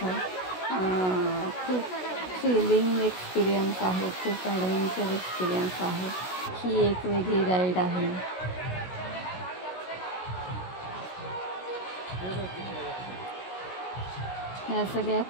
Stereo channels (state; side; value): late; right; 16 ms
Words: खूप थ्रिलिंग एक्सपिरियन्स आहे, खूप ॲडव्हेंचर एक्सपिरियन्स आहे. ही एक वेगळी राईड आहे. ह्या सगळ्या